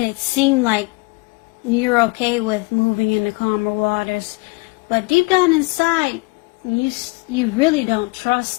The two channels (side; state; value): right; quieter; 26.9 dB